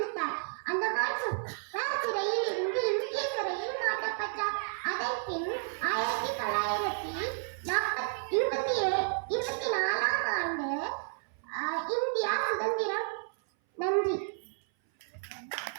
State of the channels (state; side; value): silent; left; 57 dB below the other